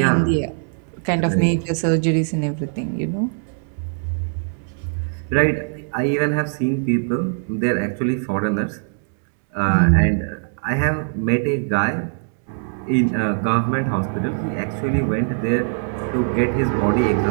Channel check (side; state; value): left; silent; digital silence